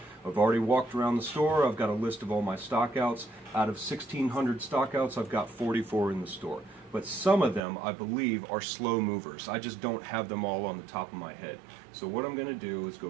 I've already walked around the store. I've got a list of all my stockouts. Out of 1,600 stockouts, I've got 44 in the store. But some of them, I believe, are slow movers. I just don't have them all on the top of my head. So what I'm going to do is go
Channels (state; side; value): drops out; left; at 7.6 s